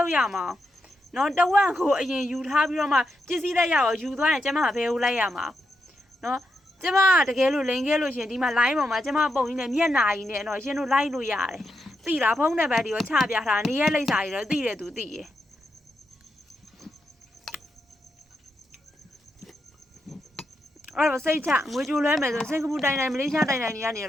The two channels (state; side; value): normal; both; correlation 0.85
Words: ုပ်ရမှာနော်တဝက်ကိုအရင်ယူထားပြီးတော့မှပစ္စည်းလက်ရအောင်ယူသွားရင်ကျမဘယ်ကိုလိုက်ရမှာနော်ကျမတကယ်လို့လိန်ခဲ့လို့ရှင်ဒီမှာ line ပေါ်မှာကျမပုံကြီးနဲ့မျက်နာကြီးနဲ့တော့ရှင်တို့လိုက်လို့ရတယ်သိလားဖုန်းနံပါတ်ဒီကိုချပြထားနေရက်လိပ်စာကြီးတော့သိတယ်သူသိရယ်အဲ့တော့စိတ်ချငွေကြိုလွှဲမယ်ဆိုစင်ကာပူတိုင်တိုင်မလေးရှားတိုင်တိုင်တွေကနေ